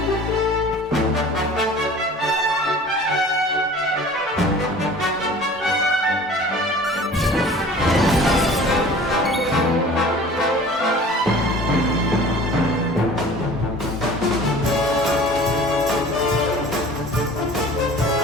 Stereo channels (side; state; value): both; normal; correlation 0.44